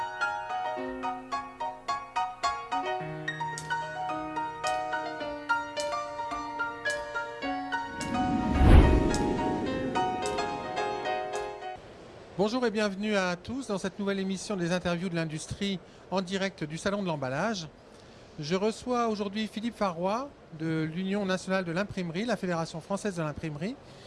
Bonjour et bienvenue à tous dans cette nouvelle émission des interviews de l'industrie en direct du Salon de l'emballage. Je reçois aujourd'hui Philippe Farroy de l'Union nationale de l'imprimerie, la Fédération française de l'imprimerie,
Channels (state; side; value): identical; both; correlation 1.00